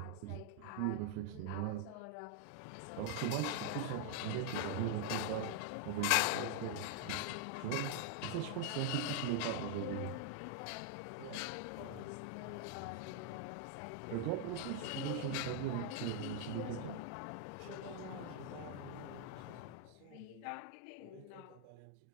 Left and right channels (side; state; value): both; different; correlation 0.00